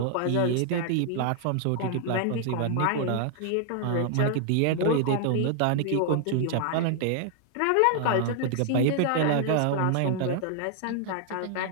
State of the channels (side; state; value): both; different; correlation 0.00